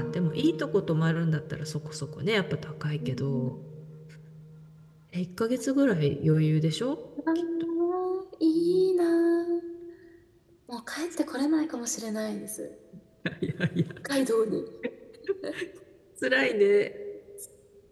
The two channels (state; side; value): identical; both; correlation 1.00